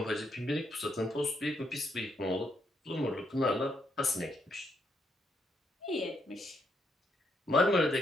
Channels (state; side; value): normal; both; correlation 0.76